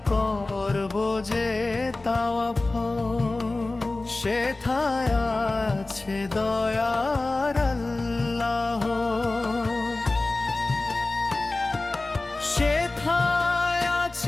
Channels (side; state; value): right; quieter; 3.1 dB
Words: করব যে তাওয়াফ। সেথায় আছে দয়ার আল্লাহ, সেথায়